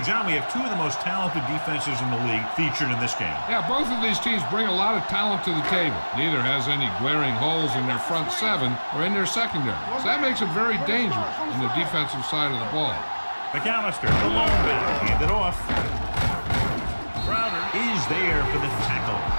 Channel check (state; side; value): inverted; both; correlation -1.00